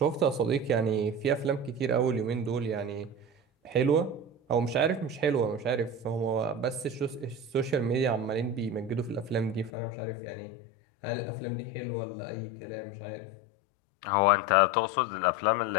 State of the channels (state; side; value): drops out; right; at 9.7 s